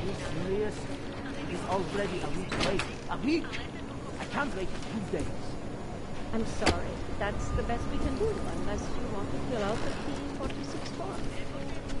Serious? It's already a week late. A week? I can't wait 2 days. I'm sorry. That's the best we can do, unless you want to fill out the P46 form.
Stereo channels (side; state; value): both; identical; correlation 1.00